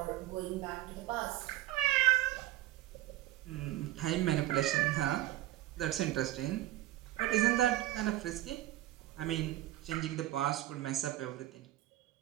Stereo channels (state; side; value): quieter; left; 15.5 dB